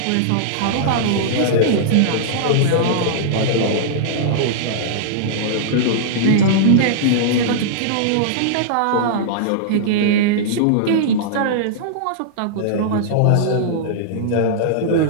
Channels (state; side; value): different; both; correlation -0.02